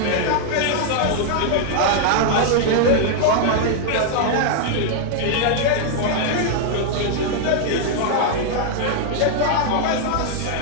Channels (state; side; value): different; both; correlation -0.01